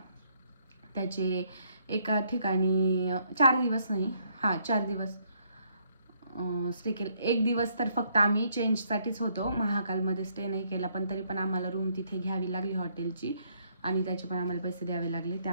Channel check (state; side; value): inverted; both; correlation -0.70